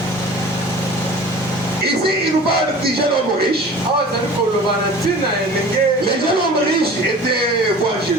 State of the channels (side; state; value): both; normal; correlation 0.42